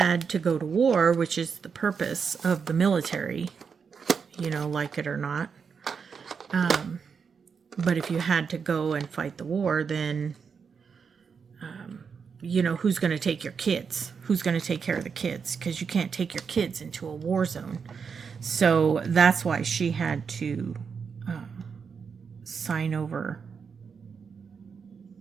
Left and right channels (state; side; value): quieter; left; 6.1 dB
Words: to go to war, which is the purpose of the military, you know, like it or not, but if you had to go and fight the war, then you know, who's going to take your kids? Who's going to take care of the kids? Because you can't take your kids into a war zone. So that's why she had to sign over.